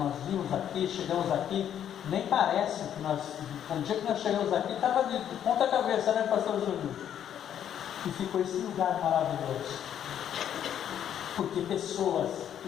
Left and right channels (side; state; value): right; quieter; 9.8 dB